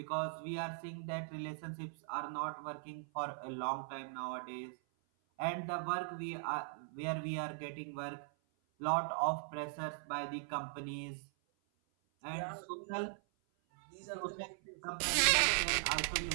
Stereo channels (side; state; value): left; silent; 51 dB below the other